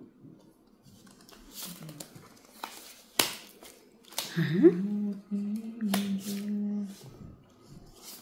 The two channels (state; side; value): identical; both; correlation 1.00